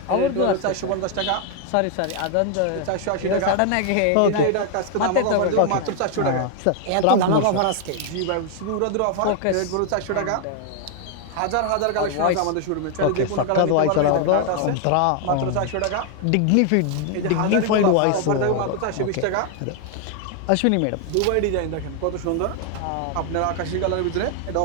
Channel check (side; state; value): both; different; correlation 0.00